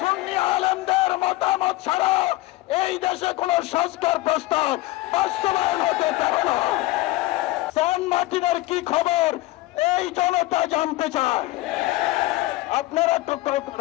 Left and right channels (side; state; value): right; quieter; 18.6 dB